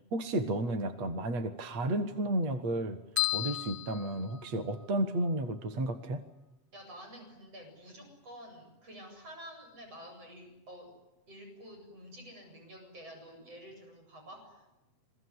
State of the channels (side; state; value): left; late; 7.3 ms